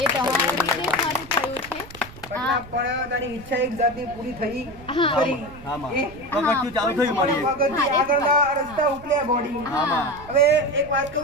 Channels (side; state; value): right; noise; rumble, 18 dB below the sound